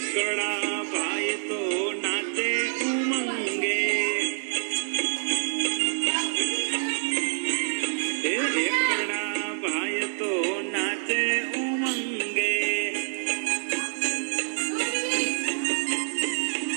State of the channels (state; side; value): silent; left; 60 dB below the other